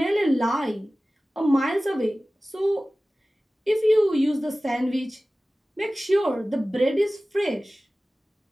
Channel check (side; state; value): both; normal; correlation 0.97